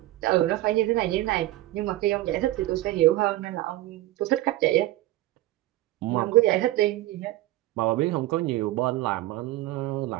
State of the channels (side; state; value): left; quieter; 16.7 dB